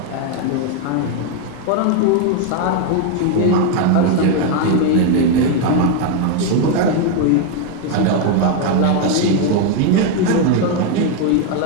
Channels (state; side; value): different; both; correlation 0.01